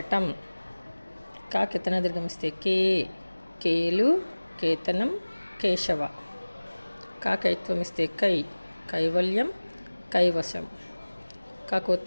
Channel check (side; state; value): both; inverted; correlation -1.00